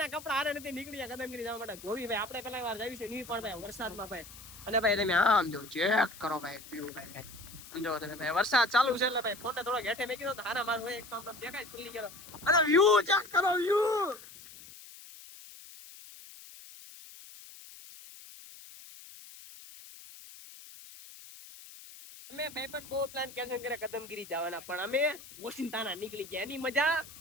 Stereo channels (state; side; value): noise; left; hiss, 17 dB below the sound